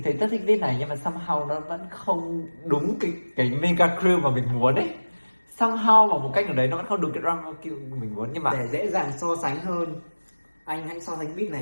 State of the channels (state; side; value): inverted; both; correlation -1.00